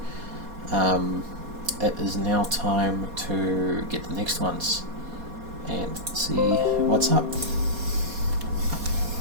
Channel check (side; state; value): left; late; 4.2 ms